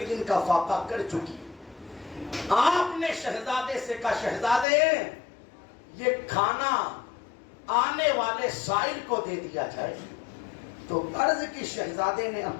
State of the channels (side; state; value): right; drops out; at 4.7 s